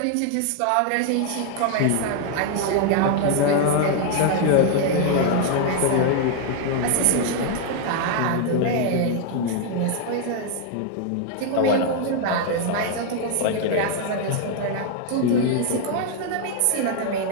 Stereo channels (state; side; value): different; both; correlation 0.00